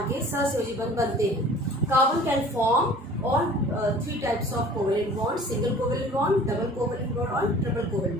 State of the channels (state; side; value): normal; both; correlation 0.47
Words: के सहसंयोजी बंध बनते हैं। Carbon can form on 3 types of covalent bond, single covalent bond, double covalent bond और ट्रिपल